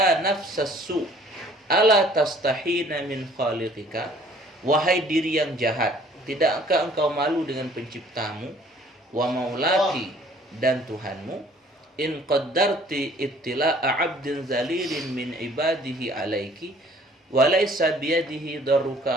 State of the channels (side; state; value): both; normal; correlation 0.55